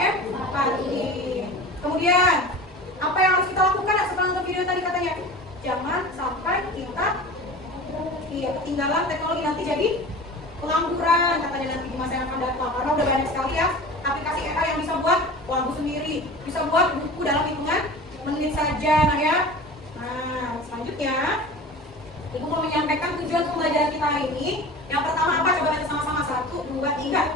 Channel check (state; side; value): normal; both; correlation 0.36